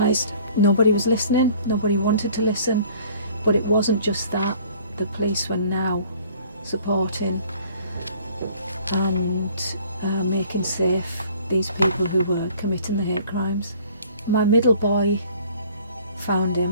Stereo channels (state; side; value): inverted; both; correlation -0.53